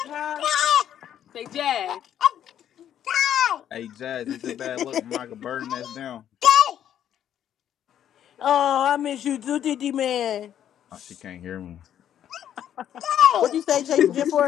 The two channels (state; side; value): quieter; right; 10.3 dB